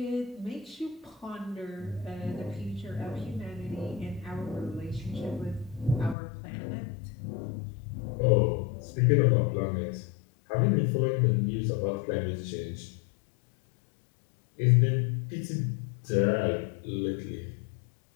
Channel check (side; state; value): right; drops out; at 6.2 s